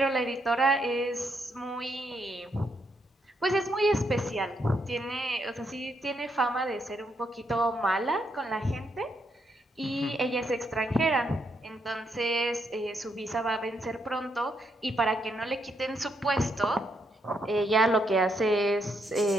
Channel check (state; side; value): normal; both; correlation 0.77